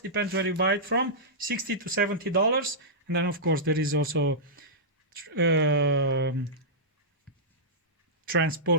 depends where you buy it from, $60 to $70. And then of course there is also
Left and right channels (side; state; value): both; normal; correlation -0.13